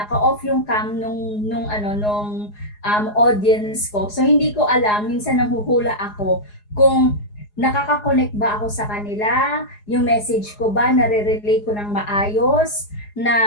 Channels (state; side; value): late; right; 4.8 ms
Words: yung cam nung audience ko. So hindi ko alam, minsan nanghuhula ako kung nakaka-connect ba ako sa kanila, yung message ko ba nare-relay ko ng maayos,